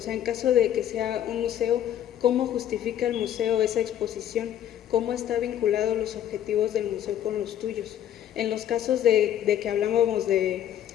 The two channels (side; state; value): right; quieter; 10.9 dB